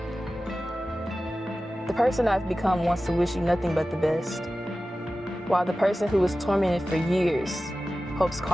The person I've become wants to wish you nothing but the best, while the person who was tormented for years hopes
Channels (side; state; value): both; normal; correlation 0.95